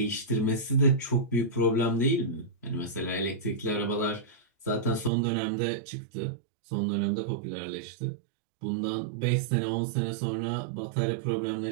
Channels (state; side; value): drops out; left; at 5.1 s